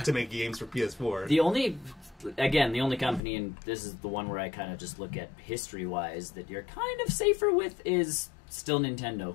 to make games for PS4. The only company, and this is the one where I kind of just look at history-wise, that you're kind of safer with is still Nintendo.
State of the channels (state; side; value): drops out; right; at 3.2 s